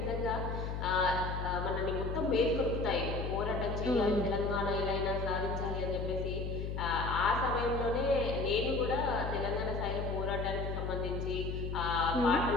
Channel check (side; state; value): left; noise; hum, 3 dB below the sound